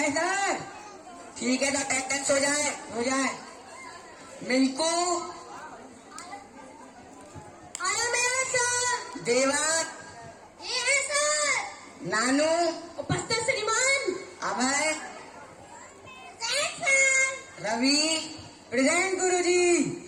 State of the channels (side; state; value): both; identical; correlation 1.00